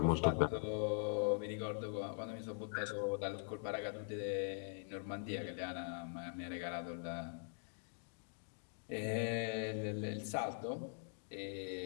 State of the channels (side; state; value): right; silent; digital silence